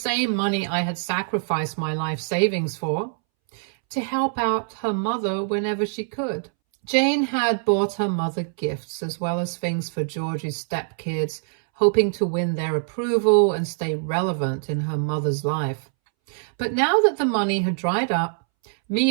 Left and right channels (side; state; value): left; silent; 63 dB below the other